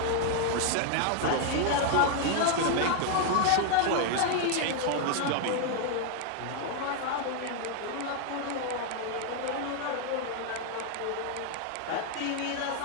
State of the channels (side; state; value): both; different; correlation 0.00